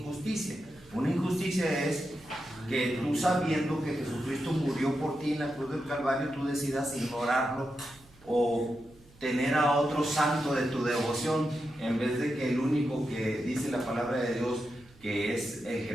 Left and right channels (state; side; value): noise; right; hum, 26 dB below the sound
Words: Una injusticia es que tú, sabiendo que Jesucristo murió por ti en la cruz del Calvario, tú decidas ignorarlo o tener a otro santo de tu devoción, en vez de que el único que dice la palabra de Dios, que es el que